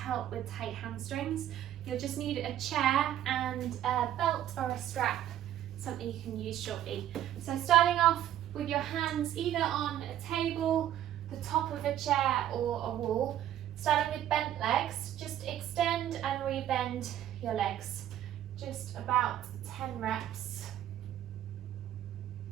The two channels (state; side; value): quieter; left; 11.8 dB